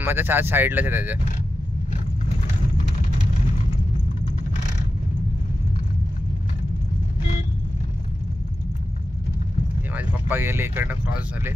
चार साईडलाच आहे त्याच्या. हे माझे पप्पा गेले इकडनं, क्रॉस झाले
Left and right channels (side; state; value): both; normal; correlation 0.92